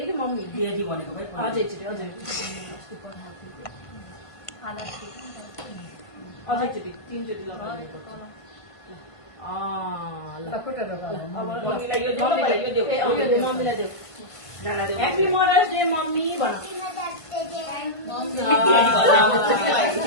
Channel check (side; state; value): right; late; 1.5 ms